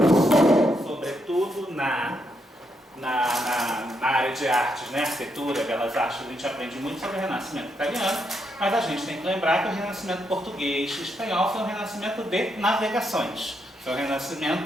sobretudo na área de artes, né, arquitetura, belas artes, a gente aprende muito sobre o Renascimento italiano, mas a gente tem que lembrar que o Renascimento português e espanhol foi um renascimento de navegações, foi um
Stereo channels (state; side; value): normal; both; correlation 0.79